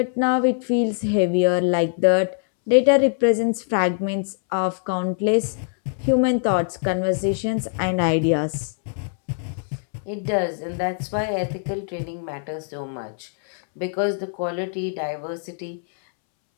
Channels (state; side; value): silent; right; 63 dB below the other